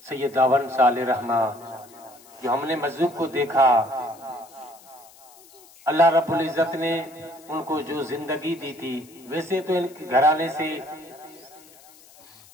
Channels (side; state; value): left; noise; hiss, 24 dB below the sound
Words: सैयद दावन साले रहमा, जो हमने मजलूब को देखा, अल्लाह रब्बुल इज्जत ने उनको जो जिंदगी दी थी, वैसे तो इनके घराने से